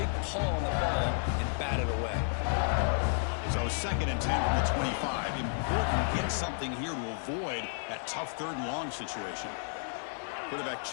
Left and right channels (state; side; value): silent; right; digital silence